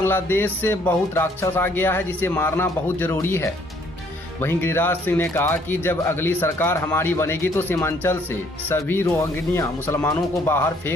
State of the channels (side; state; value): both; normal; correlation 0.64